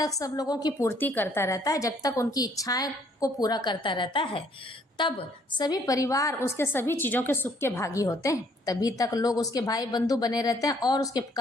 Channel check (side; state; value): both; normal; correlation 0.64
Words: सब लोगों की पूर्ति करता रहता है, जब तक उनकी इच्छाएं को पूरा करता रहता है, तब सभी परिवार उसके सभी चीज़ों के सुख के भागी होते हैं। तभी तक लोग उसके भाई बंधु बने रहते हैं और उसके